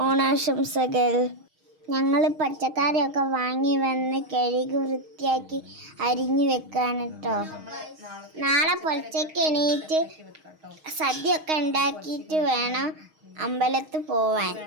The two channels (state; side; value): late; left; 6.4 ms